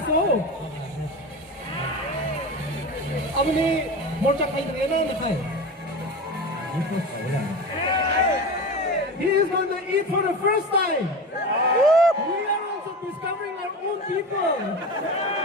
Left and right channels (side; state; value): both; normal; correlation 0.27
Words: 아버님 몰짝 하이드 예나는 하이. He is going to eat for the first time. We are also discovering our own people.